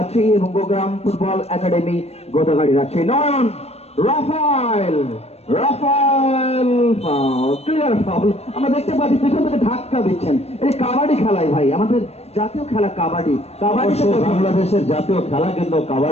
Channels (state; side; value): late; right; 0.30 ms